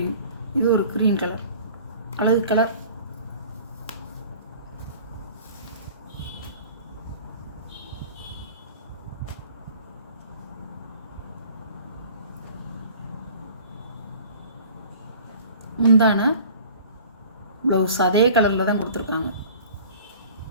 இது ஒரு க்ரீன் கலர், அழகு கலர். முந்தான ப்ளவுஸ் அதே கலரில் தான் கொடுத்துருக்காங்க.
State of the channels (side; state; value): both; inverted; correlation -0.46